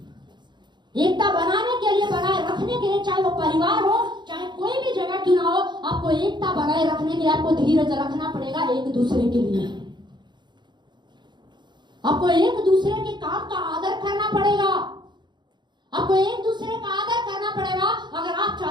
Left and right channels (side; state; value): left; late; 0.22 ms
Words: एकता बनाने के लिए, बनाए रखने के लिए, चाहे वो परिवार हो, चाहे कोई भी जगह क्यों ना हो, आपको एकता बनाए रखने के लिए आपको धीरज रखना पड़ेगा एक दूसरे के लिए। आपको एक दूसरे के काम का आदर करना पड़ेगा, आपको एक दूसरे का आदर करना पड़ेगा अगर आप